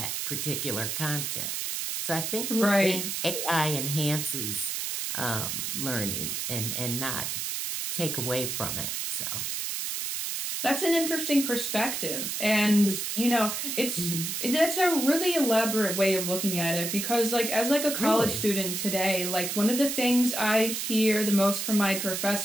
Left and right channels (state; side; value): noise; right; hiss, 3 dB below the sound